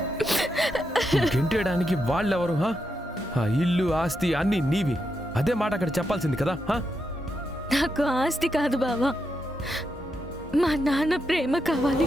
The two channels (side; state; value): both; normal; correlation 0.84